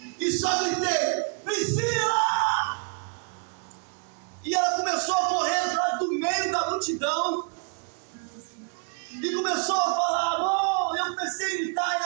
e só gritei: Priscila! E ela começou a correr lá do meio da multidão e começou a falar: amor. Eu comecei a gritar,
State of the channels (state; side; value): quieter; left; 39.5 dB